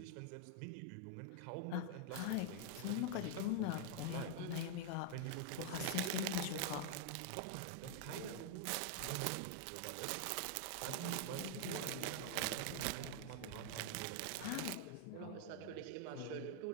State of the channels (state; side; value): different; both; correlation 0.00